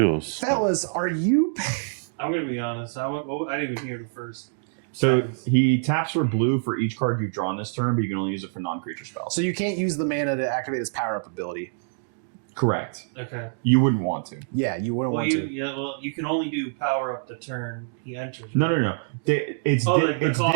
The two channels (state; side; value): silent; left; digital silence